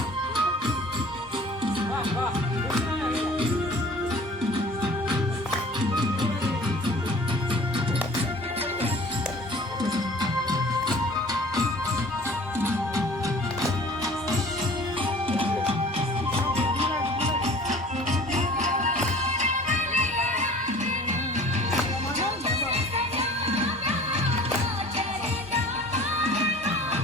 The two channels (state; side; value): normal; both; correlation 0.47